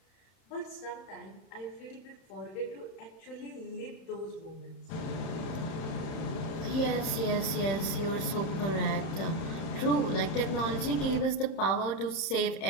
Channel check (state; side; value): late; right; 31 ms